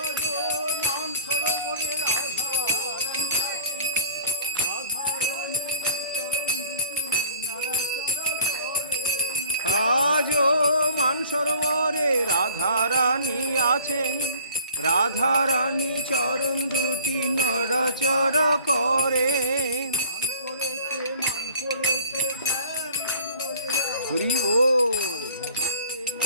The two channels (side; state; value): both; inverted; correlation -0.48